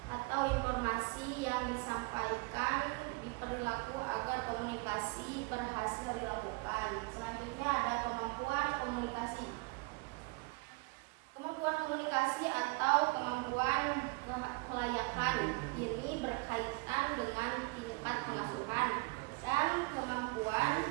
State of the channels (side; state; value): left; quieter; 28.6 dB